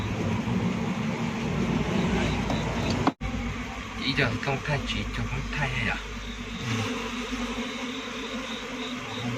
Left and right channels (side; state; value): both; identical; correlation 1.00